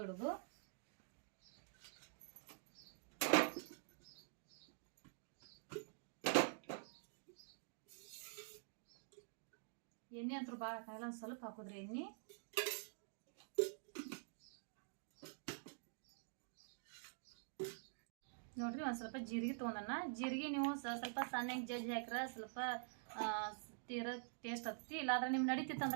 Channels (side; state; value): left; silent; digital silence